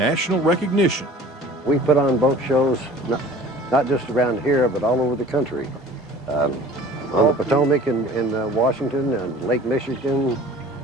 recognition. We put on boat shows not just around here, but all over the country. On the Potomac in Washington, and Lake Michigan,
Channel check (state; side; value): normal; both; correlation 0.47